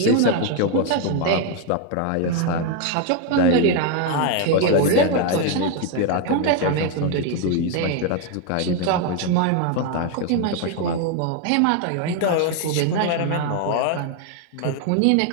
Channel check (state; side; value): different; both; correlation 0.01